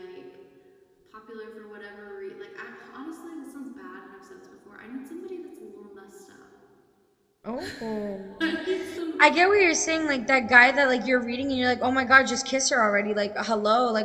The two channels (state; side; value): identical; both; correlation 1.00